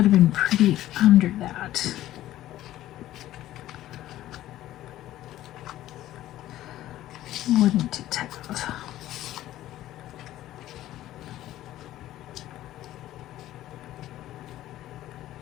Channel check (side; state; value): right; quieter; 14.1 dB